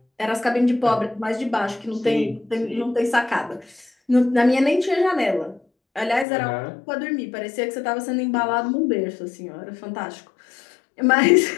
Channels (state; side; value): drops out; right; at 6.2 s